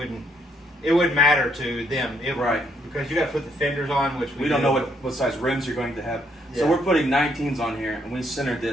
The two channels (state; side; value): normal; both; correlation 0.72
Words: matter to them. Right. Because you got to put the fenders on, which We don't know what size rims you're going to have. So Yeah. we're putting 19s on here, and we centered